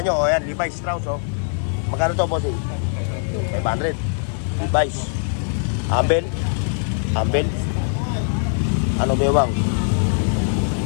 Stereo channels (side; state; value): right; silent; 65 dB below the other